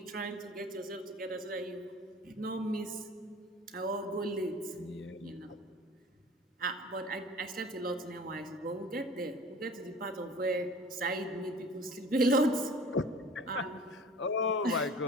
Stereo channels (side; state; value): both; normal; correlation 0.43